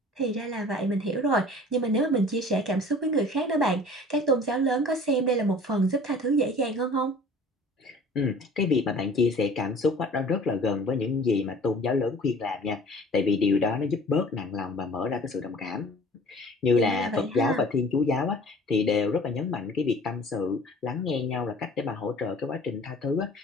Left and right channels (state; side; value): normal; both; correlation 0.47